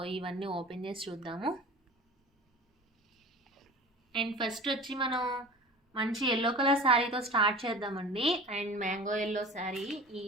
ఇవన్నీ ఓపెన్ చేసి చూద్దాము. అండ్ ఫస్ట్ వచ్చి మనం మంచి ఎల్లో కలర్ శారీతో స్టార్ట్ చేద్దామండి. అండ్ మ్యాంగో ఎల్లో శారీ, ఈ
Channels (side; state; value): both; normal; correlation 0.38